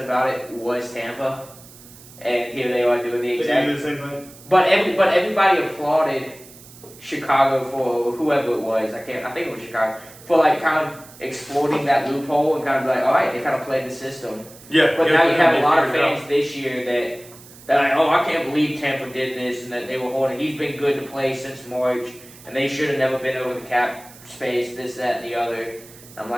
it was Tampa. And here they are doing the exact same thing. But everybody applauded Chicago for whoever it was. I think it was Chicago for kind of exploiting that loophole and kind of all right, they kind of played the system. Yeah. But now you have a lot of fans this year that I can't believe Tampa did this and that they were holding. He's been good to play since March, and they should have never been over the cap space. This, that, and the other. I'm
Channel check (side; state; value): right; noise; hiss, 21 dB below the sound